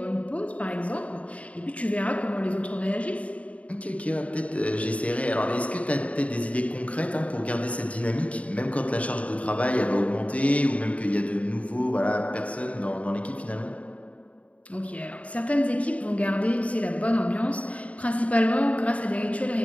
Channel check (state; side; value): late; right; 0.066 ms